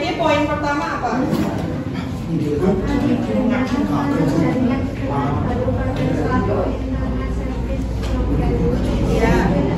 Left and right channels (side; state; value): both; identical; correlation 1.00